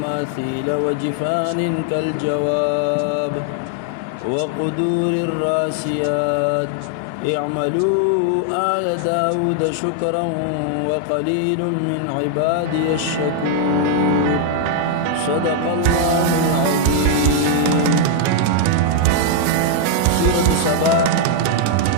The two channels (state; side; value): different; both; correlation 0.00